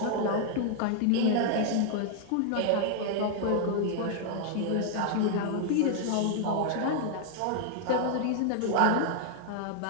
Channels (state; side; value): different; both; correlation 0.00